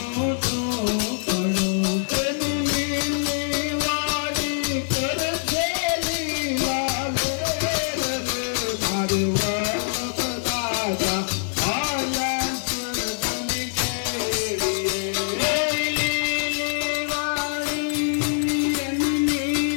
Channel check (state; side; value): silent; right; digital silence